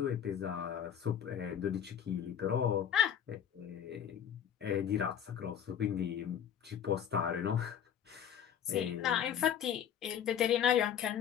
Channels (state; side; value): quieter; right; 9.0 dB